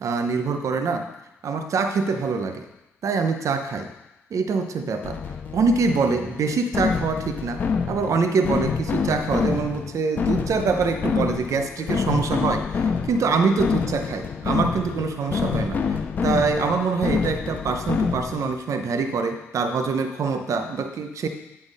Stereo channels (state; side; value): normal; both; correlation 0.67